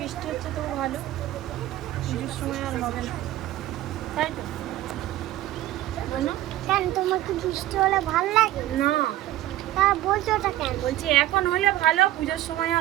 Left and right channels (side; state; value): left; quieter; 14.8 dB